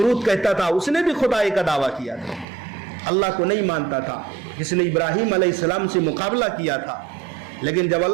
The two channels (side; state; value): left; drops out; at 2.5 s